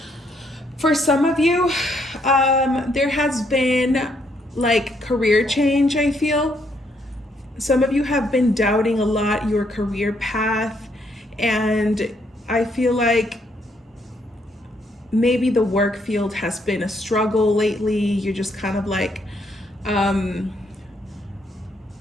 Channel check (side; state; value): both; normal; correlation 0.72